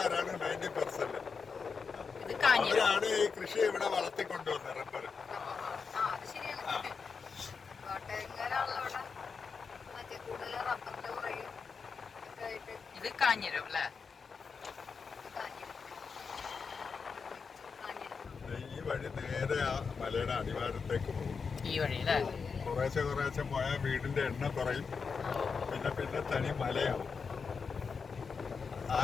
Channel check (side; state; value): right; quieter; 5.4 dB